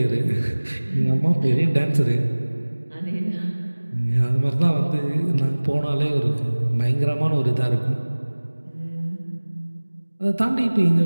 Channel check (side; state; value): both; inverted; correlation -1.00